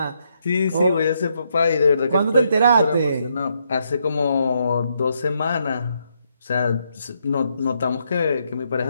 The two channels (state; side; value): inverted; both; correlation -0.77